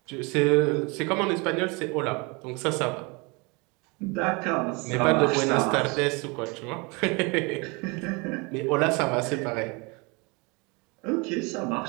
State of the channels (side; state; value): left; quieter; 28.7 dB